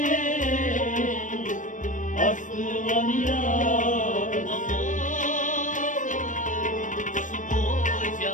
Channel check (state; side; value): late; right; 0.37 ms